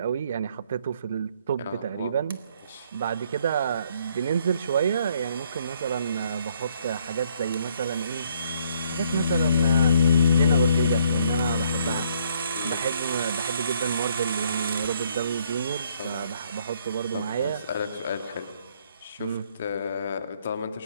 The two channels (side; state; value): both; inverted; correlation -0.67